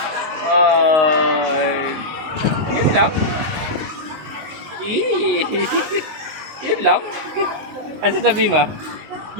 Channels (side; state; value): left; late; 19 ms